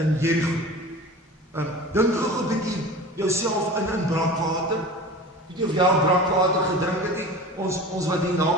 Jerigo. Dink gou 'n bietjie jouself in brakwater. Weet jy of jy al brakwater gedrink het nie? Ons wat hier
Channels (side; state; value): both; normal; correlation 0.36